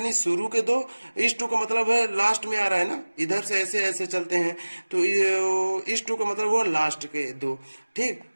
शुरू के 2। इस 2 का मतलब है लास्ट में आ रहा है ना, इधर से ऐसे ऐसे चलते हैं। तो इस 2 का मतलब वो लास्ट के 2। ठीक।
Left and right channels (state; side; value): inverted; both; correlation -1.00